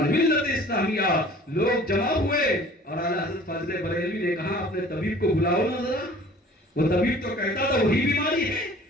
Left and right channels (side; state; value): both; normal; correlation 0.48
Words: ملت اسلامیہ، لوگ جمع ہوئے اور اعلیٰ حضرت فاضل بریلوی نے کہا اپنے طبیب کو بلاؤ نا ذرا. وہ طبیب تو کہتا تھا وہی بیماری ہے،